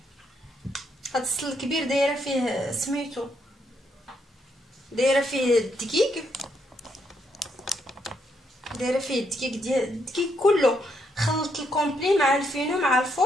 هاد السطل الكبير دايره فيه سميتو دايره فيه الدقيق، دايره فيه الدقيق ديال الدقيق كله، خلطت الكومبلي مع الفينو مع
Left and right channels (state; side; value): normal; both; correlation 0.76